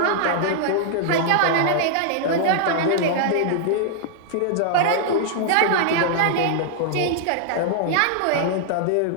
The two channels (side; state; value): both; different; correlation -0.01